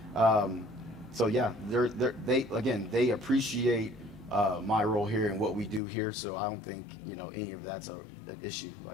So yeah, they appreciate my role here and what we do here. So I don't think any of that's an issue.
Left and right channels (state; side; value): drops out; right; at 5.8 s